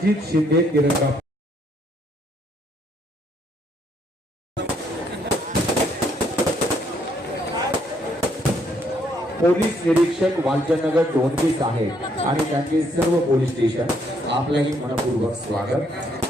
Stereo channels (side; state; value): both; normal; correlation 0.70